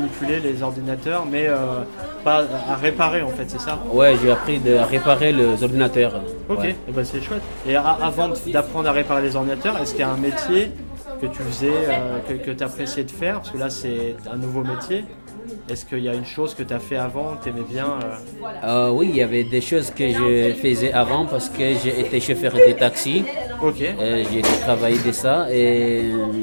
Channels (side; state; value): both; inverted; correlation -1.00